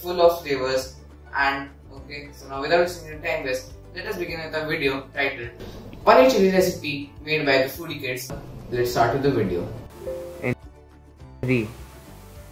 full of flavors. And okay, so now without wasting any time, let us begin with a video titled Paneer Chili Recipe made by the Foodie Kids. Let's start with the video. In 3,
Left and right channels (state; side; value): identical; both; correlation 1.00